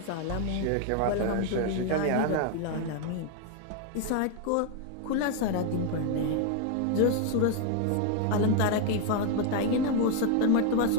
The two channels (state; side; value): different; both; correlation 0.01